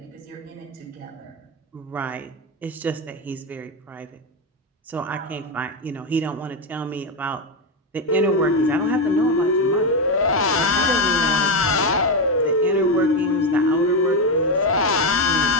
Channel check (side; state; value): both; normal; correlation 0.09